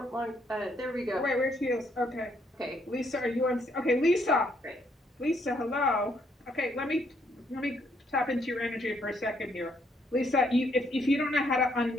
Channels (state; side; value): normal; both; correlation 0.71